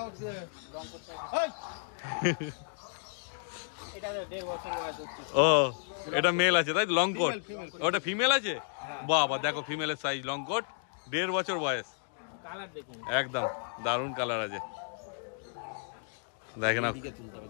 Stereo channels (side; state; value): right; silent; digital silence